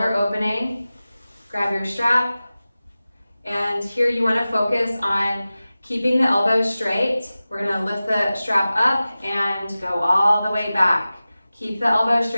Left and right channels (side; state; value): both; inverted; correlation -0.96